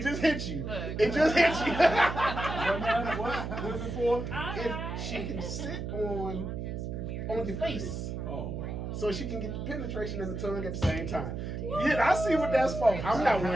just hit you. Look. It just hit you. What? What's it for? If she can sit on your face, Oh, wow. so she can get the penetration and the tongue at the same time. Yeah, I see what that's for. I'm not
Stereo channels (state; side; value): noise; right; hum, 5 dB below the sound